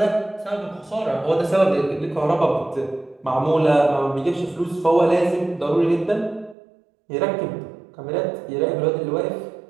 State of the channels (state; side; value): drops out; left; at 6.6 s